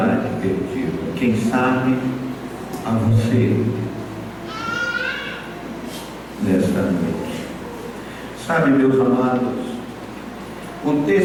perdida. Quem sabe a você nesta noite. Sabe, meus amados, o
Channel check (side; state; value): both; identical; correlation 1.00